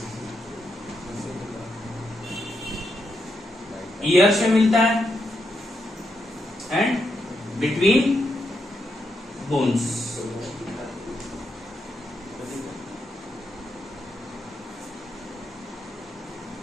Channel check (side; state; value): both; normal; correlation 0.82